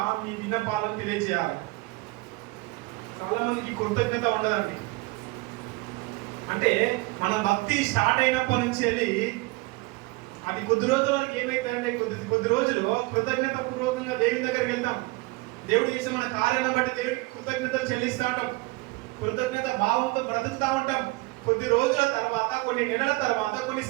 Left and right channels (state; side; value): quieter; left; 23.2 dB